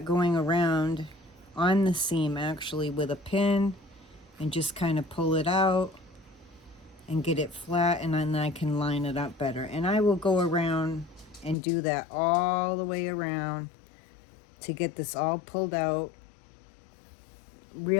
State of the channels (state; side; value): drops out; right; at 11.6 s